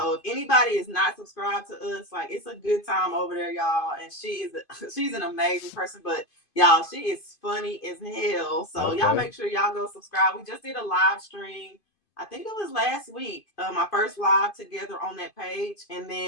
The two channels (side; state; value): right; late; 2.5 ms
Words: if anybody is not subscribed to us, like it's a good time over there, y'all. And she's an amazing person, but y'all, she is funny as hell. So y'all okay, make sure y'all go subscribe. We just did a live stream. I think it was last week, my first live together on that page. And